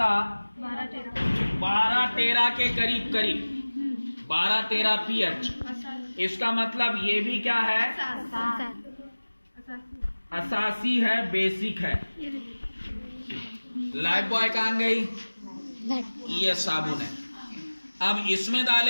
12-13 के करीब 12-13 पीएच। इसका मतलब ये भी क्या है, असासी है, बेसिक है। लाइफ बॉय कहाँ गई, ये साबुन है। अब इसमें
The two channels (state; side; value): inverted; both; correlation -1.00